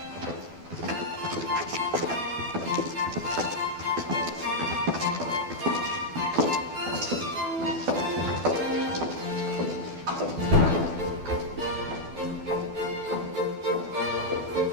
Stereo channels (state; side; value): late; left; 12 ms